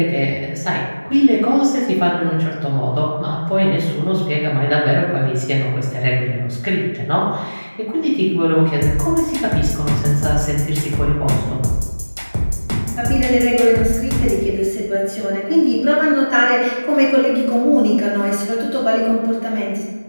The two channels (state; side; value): inverted; both; correlation -1.00